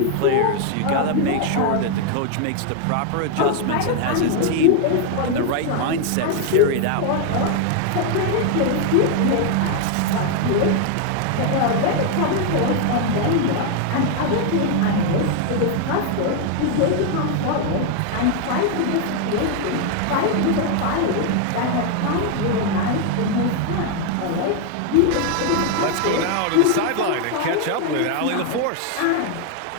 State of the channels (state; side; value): different; both; correlation 0.00